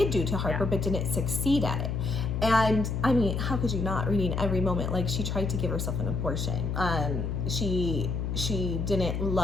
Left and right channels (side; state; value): left; noise; hum, 1 dB below the sound